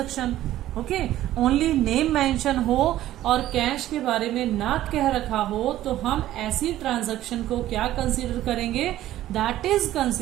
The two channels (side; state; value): left; quieter; 13.8 dB